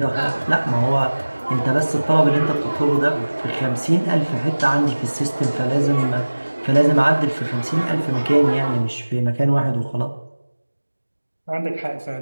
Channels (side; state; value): both; inverted; correlation -1.00